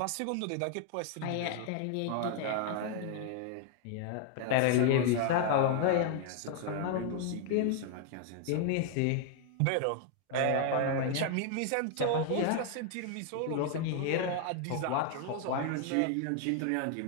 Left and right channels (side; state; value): both; different; correlation 0.00